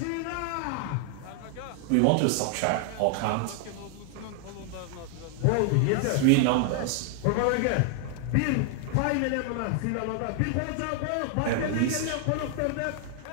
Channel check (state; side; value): different; both; correlation 0.00